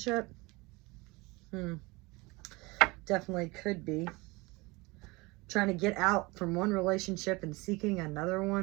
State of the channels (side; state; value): left; quieter; 24.1 dB